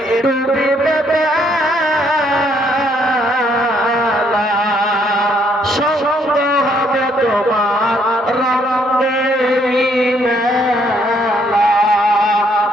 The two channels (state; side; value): normal; both; correlation 0.69